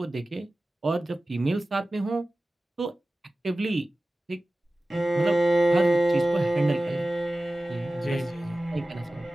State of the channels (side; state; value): both; normal; correlation 0.96